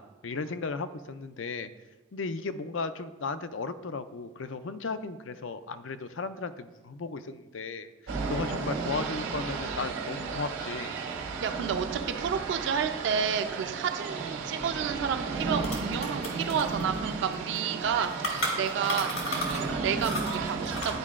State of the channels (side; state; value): left; quieter; 3.3 dB